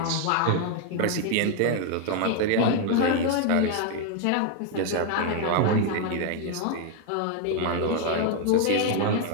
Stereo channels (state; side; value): different; both; correlation 0.01